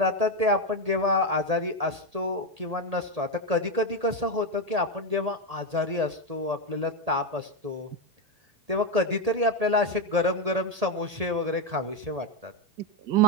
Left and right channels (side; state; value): left; late; 1.8 ms